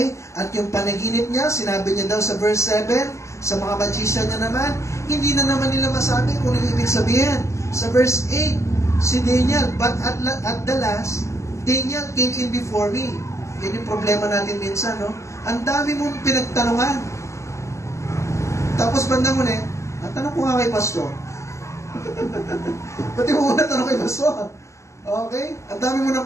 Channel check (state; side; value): late; right; 0.14 ms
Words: At yung panaginip niya, sinabi niya daw sa verse 7, sa mga magician niya naman, hindi na naman nila masabi kung ano ibig sabihin. Sa verse 8, si Daniel, but at the last, Daniel came in before me. Yan yung problema natin minsan, no? Ang dami mong pinagtanungan. Tapos bandang muli, ang tanong ko nga kay pastor, pati mo muna tanong kay pastor. Okay? Ang dami mo nang